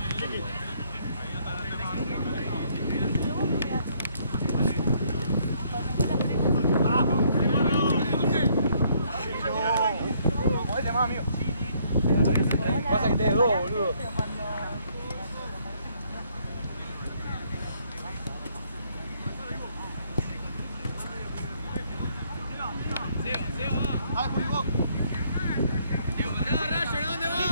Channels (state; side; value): inverted; both; correlation -0.67